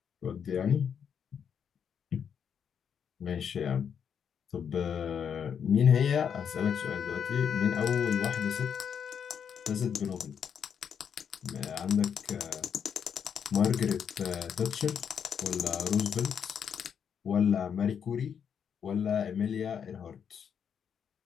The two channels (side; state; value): right; quieter; 7.6 dB